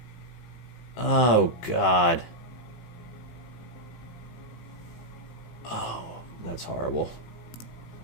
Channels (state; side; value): late; right; 18 ms